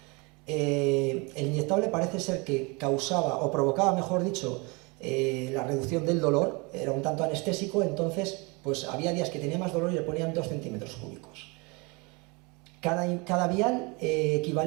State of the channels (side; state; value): left; quieter; 28.6 dB